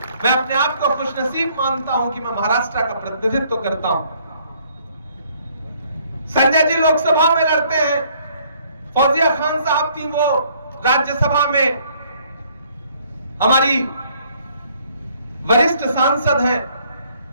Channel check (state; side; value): inverted; both; correlation -0.63